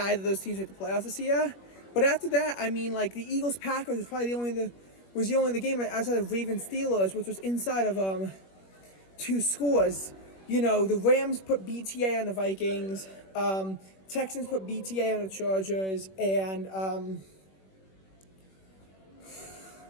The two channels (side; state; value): right; late; 21 ms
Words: of those teams made the playoffs this year. But after that, I mean, the Eagles-Packers was probably the only game outside of Ravens-Steelers, which was inside of 2 scores. The Rams put BTA on the Vikings, Texans put BTA on the Chargers, and